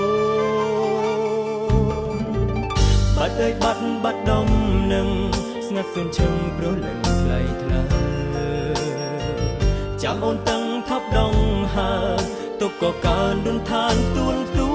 បាត់អើយបាត់ដំនឹងស្ងាត់សួនឈឹងព្រោះលឹងថ្លៃថ្លាចាំអូនតឹងថប់ដងហើទុកក៏កើនដួនឋានទួ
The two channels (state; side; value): identical; both; correlation 1.00